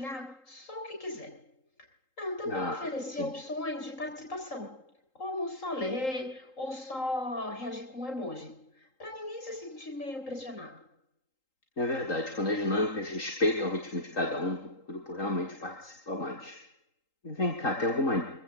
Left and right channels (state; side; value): late; right; 3.8 ms